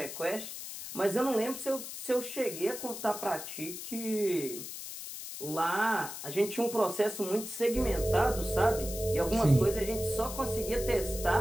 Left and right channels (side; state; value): left; noise; hiss, 9 dB below the sound